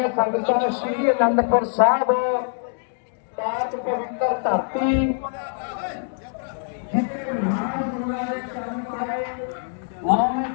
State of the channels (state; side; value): silent; right; digital silence